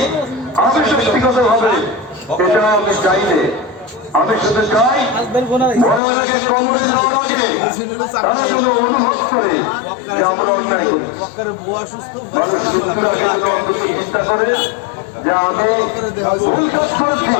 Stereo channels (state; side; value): drops out; right; at 6.0 s